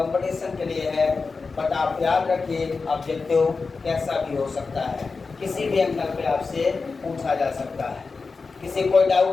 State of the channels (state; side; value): quieter; right; 4.4 dB